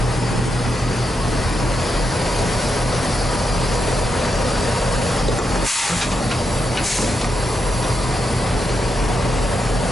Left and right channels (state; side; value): normal; both; correlation 0.84